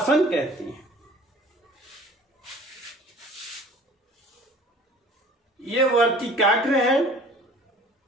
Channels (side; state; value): both; normal; correlation 0.49